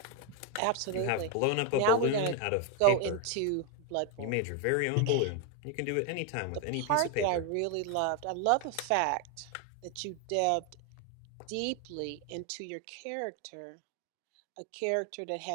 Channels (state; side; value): different; both; correlation 0.01